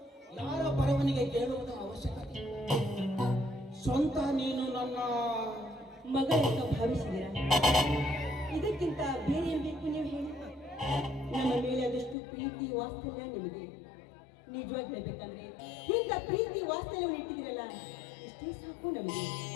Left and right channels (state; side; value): drops out; right; at 12.2 s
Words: ಯಾರ ಬರವಣಿಗೆ ಕೇಳುವುದ ಅವಶ್ಯಕತೆ. ಸ್ವಂತ ನೀನು ನನ್ನ ಮಗ ಅಂತ ಭಾವಿಸಿದ್ದೀರಾ? ಇದಕ್ಕಿಂತ ಬೇರೆ ಏನ್ ಬೇಕು ನೀವು ಹೇಳಿ? ನಮ್ಮ ಮೇಲೆ ಅದಷ್ಟು ಪ್ರೀತಿ ವಾತ್ಸಲ್ಯ ನಿಮಗೆ. ನಿಜವಾಗಿ ಹೇಳ್ಬೇಕಂದ್ರೆ ಇಂಥ ಪ್ರೀತಿ ವಾತ್ಸಲ್ಯವನ್ನು ಇಟ್ಟಿದ್ದೀರಲ್ಲ, ಇಷ್ಟೇ ಸಾಕು ನಮಗೆ,